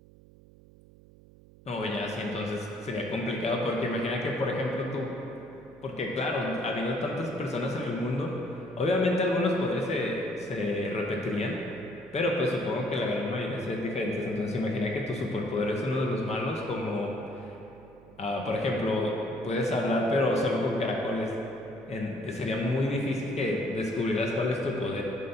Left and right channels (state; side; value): noise; right; hum, 23 dB below the sound